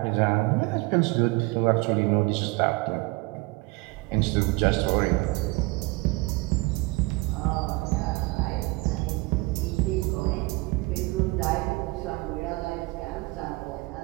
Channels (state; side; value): quieter; left; 24.0 dB